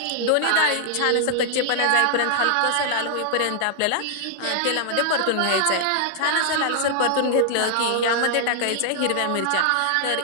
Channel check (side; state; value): both; different; correlation -0.01